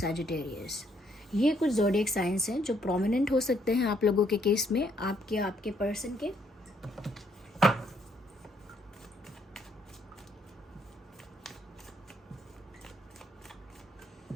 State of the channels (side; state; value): both; normal; correlation 0.70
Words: ये कुछ ज़ोडिएक साइंस हैं जो प्रोमिनेंट हो सकते हैं आप लोगों के केस में, आपके पर्सन के।